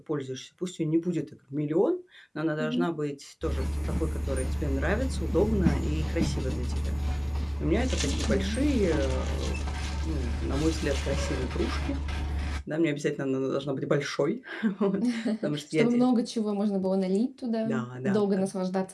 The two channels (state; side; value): identical; both; correlation 1.00